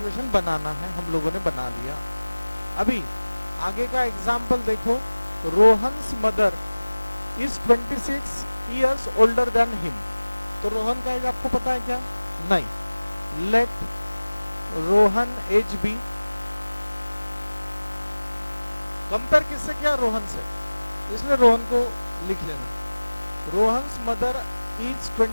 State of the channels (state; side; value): inverted; both; correlation -1.00